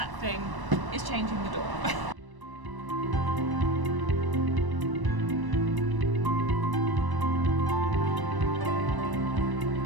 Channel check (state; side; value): late; left; 1.0 ms